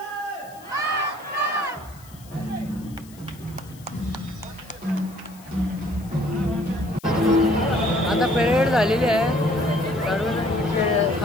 आता परेड झालेली आहे. सर्व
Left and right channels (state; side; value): noise; left; hiss, 23 dB below the sound